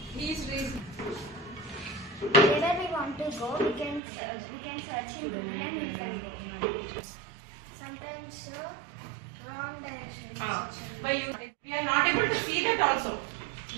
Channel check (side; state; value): left; drops out; at 4.0 s